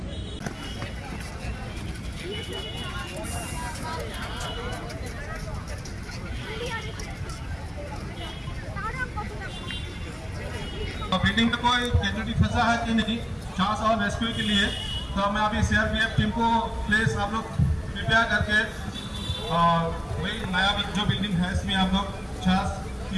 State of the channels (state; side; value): identical; both; correlation 1.00